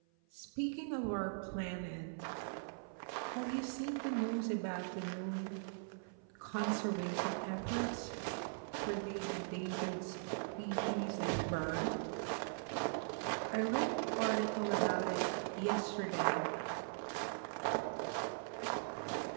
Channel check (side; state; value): left; silent; 51 dB below the other